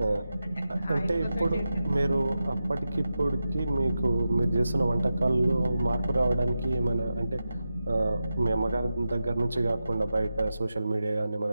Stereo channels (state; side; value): inverted; both; correlation -0.91